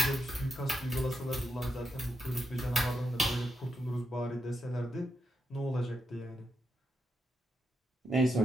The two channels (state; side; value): normal; both; correlation 0.83